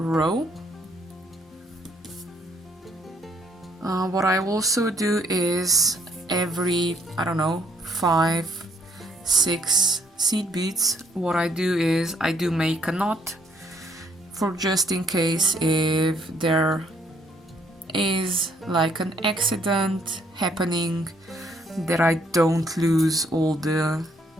What I also do is every, I don't know, 5, 6 seed beads, what I do is I do make a knot for just in case if there is like an accident happening that I don't lose all the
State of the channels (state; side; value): normal; both; correlation 0.67